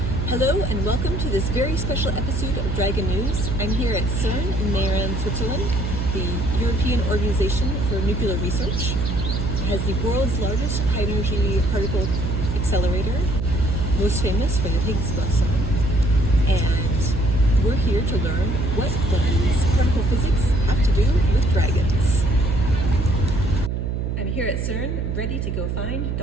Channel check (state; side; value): noise; right; hum, 1 dB below the sound